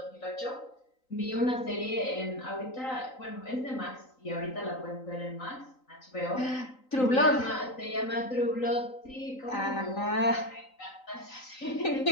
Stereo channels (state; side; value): late; right; 3.9 ms